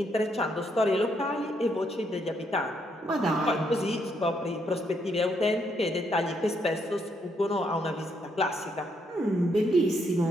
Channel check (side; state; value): both; normal; correlation 0.75